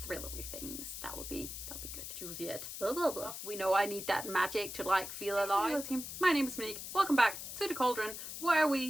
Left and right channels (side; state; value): left; noise; hiss, 8 dB below the sound